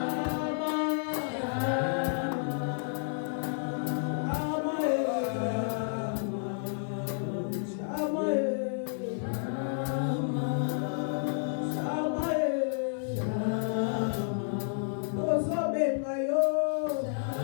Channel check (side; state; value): right; silent; digital silence